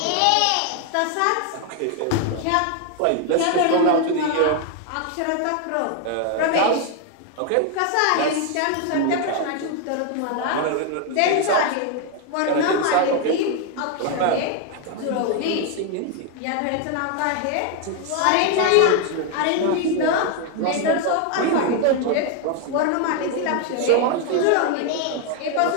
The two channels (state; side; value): different; both; correlation 0.01